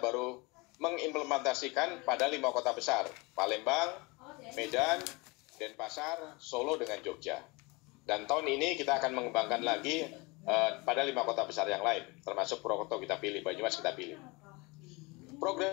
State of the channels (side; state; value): right; quieter; 26.1 dB